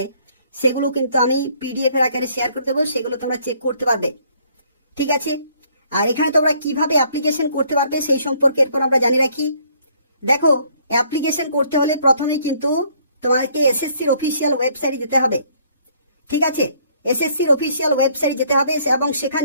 সেগুলো কিন্তু আমি পিডিএফ এর আকারে শেয়ার করে দেবো, সেগুলো তোমরা চেক করতে পারবে। ঠিক আছে, আর এখানে তোমরা কিভাবে অ্যাপ্লিকেশন করতে পারবে সেই সম্পর্কে এরপর আমরা জানিয়ে রাখি। দেখো অ্যাপ্লিকেশন করতে হলে প্রথমেই কিন্তু তোমাদেরকে এসএসসির অফিসিয়াল ওয়েবসাইটে যেতে হবে। ঠিক আছে, এসএসসির অফিসিয়াল ওয়েবসাইটে যেতে হবে এবং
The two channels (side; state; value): both; inverted; correlation -0.63